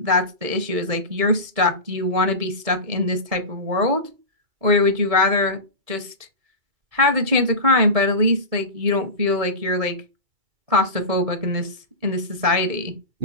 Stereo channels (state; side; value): late; left; 2.3 ms